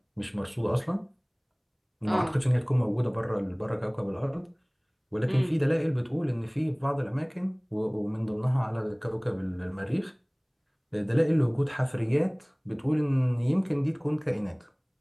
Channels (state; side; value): identical; both; correlation 1.00